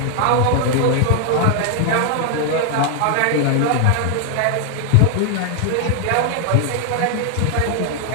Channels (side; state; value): both; different; correlation 0.00